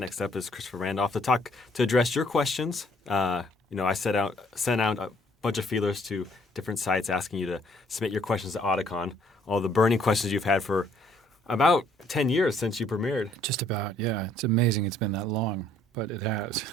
up is Christopher Randolph to address your questions. I sent out a bunch of feelers to different sites asking you to submit your questions to Otacon. All the burning questions you've had for about 10 years since you premiered. Just about, yeah. It's amazing it's been that long, but it has.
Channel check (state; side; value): normal; both; correlation 0.63